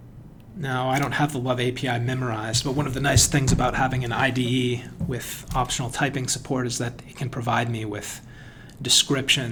Now, I don't have the Love API memorized, but one of the nice things about having an IDE with optional typing support is that it can provide me with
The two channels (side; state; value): both; identical; correlation 1.00